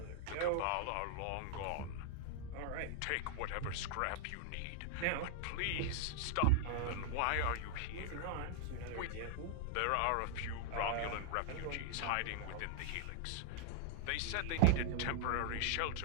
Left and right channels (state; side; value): different; both; correlation -0.01